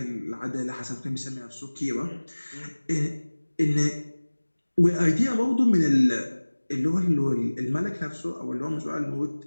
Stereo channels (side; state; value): both; inverted; correlation -1.00